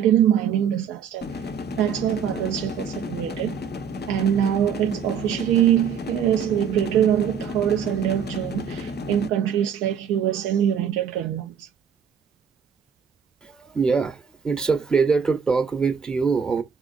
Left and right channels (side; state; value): left; quieter; 7.4 dB